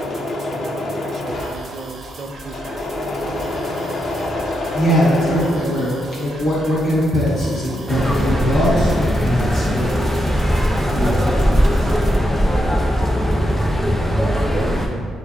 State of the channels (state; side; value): normal; both; correlation 0.84